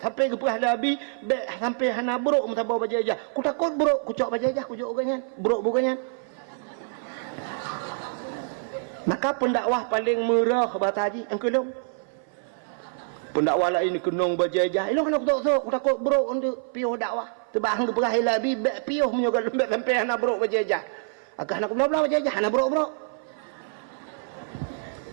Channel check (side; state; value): left; silent; 58 dB below the other